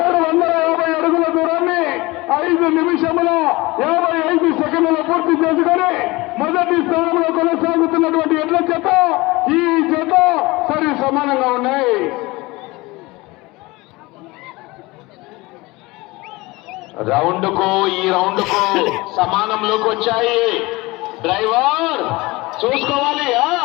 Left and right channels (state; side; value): quieter; right; 22.1 dB